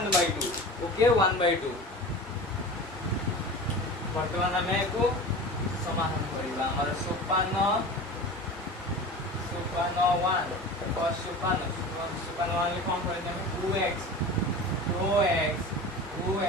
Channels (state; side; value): normal; both; correlation 0.34